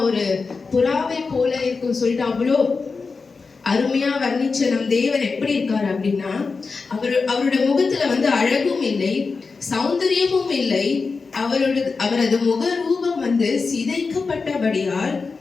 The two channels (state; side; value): quieter; right; 4.5 dB